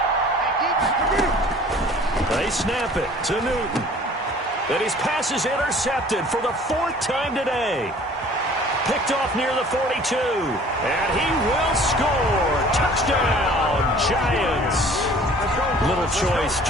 They snap it to Newton. And his pass is intercepted for the 4th time today. Picked off near the 42. And he will score. Touchdown, Giants. Little choice,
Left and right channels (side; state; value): both; normal; correlation 0.50